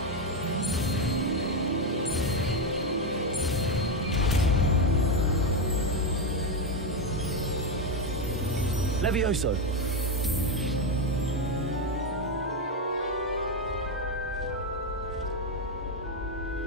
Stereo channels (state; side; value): normal; both; correlation 0.08